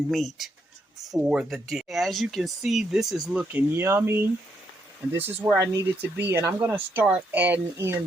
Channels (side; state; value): both; normal; correlation 0.77